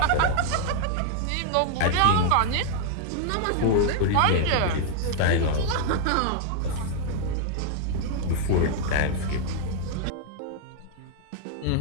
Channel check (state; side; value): different; both; correlation 0.00